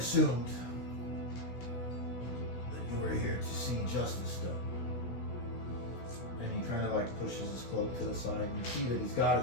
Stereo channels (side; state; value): right; late; 16 ms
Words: that you were here to see justice done. And he kind of pushes his cloak to the side, and you see that he's got